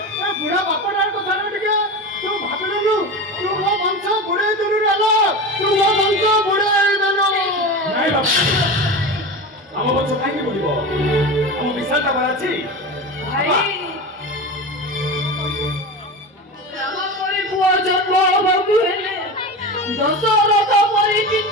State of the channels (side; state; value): both; normal; correlation 0.26